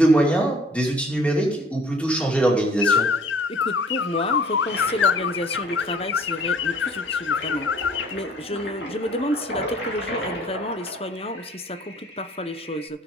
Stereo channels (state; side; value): normal; both; correlation 0.55